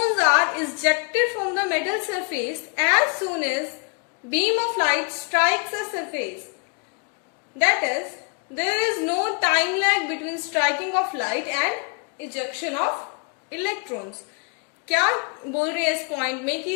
are ejected from the metal surface as soon as beam of light strikes a surface. That is there is no time lag between striking of light and ejection of electrons. क्या बोल रहे हैं इस point में कि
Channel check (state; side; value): quieter; right; 38.3 dB